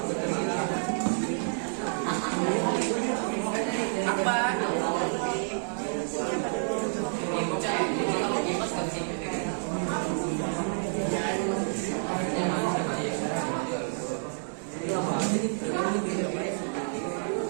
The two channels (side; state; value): left; silent; 59 dB below the other